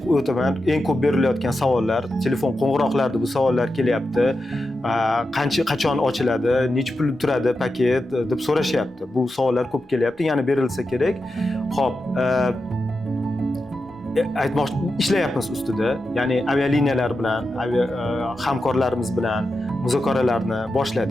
o'taman, eng ko'p berilayotgan savollar, telefon qo'ng'iroqlarida bu savollar kelyapti. Qachon ochiladi, necha pul turadi paket deb so'rashyapti. Bu savollar ko'p kelyapti, yana berilsa kerak. Xo'p, ishlayapmiz ustida. Ya'ni avialiniyalar bilan, hamkorlarimiz bilan muzokaralarni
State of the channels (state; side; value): normal; both; correlation 0.89